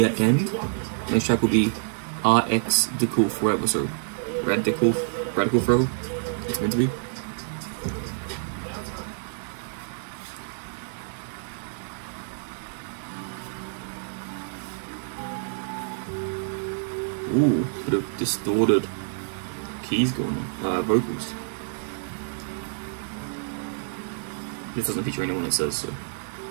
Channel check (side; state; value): left; silent; digital silence